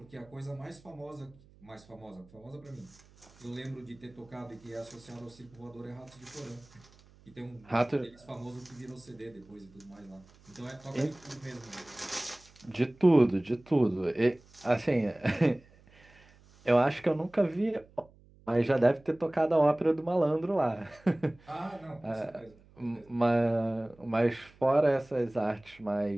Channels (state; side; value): noise; right; hum, 26 dB below the sound